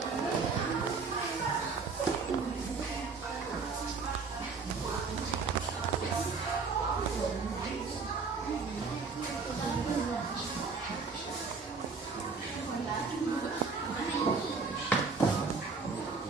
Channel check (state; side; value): quieter; left; 4.6 dB